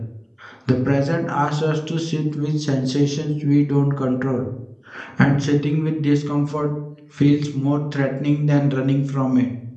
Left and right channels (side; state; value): both; identical; correlation 1.00